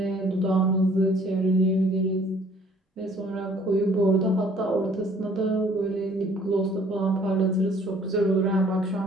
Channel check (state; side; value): normal; both; correlation 0.57